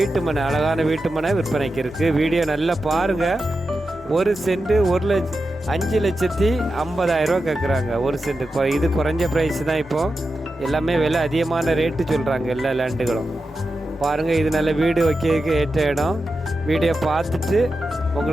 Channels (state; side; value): normal; both; correlation 0.90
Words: மனை, அழகான வீட்டு மனை விற்பனைக்கு இருக்குது. வீடியோ நல்லா பாருங்கள். 1 சென்ட் 5,50,000 கேட்குறாங்க. 1 சென்ட். இது குறைஞ்ச ப்ரைஸ் தான். இப்போது எல்லாமே விலை அதிகமான ரேட்டு சொல்கிறாங்க எல்லா லேண்டுகளும். பாருங்கள், இது நல்ல வீடு வைக்கிறதுக்கு ஏற்ற இடம். வீடியோ பார்த்துட்டு